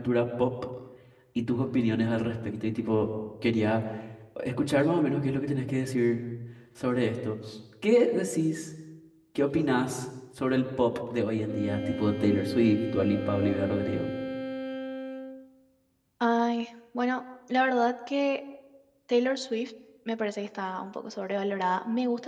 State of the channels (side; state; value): both; identical; correlation 1.00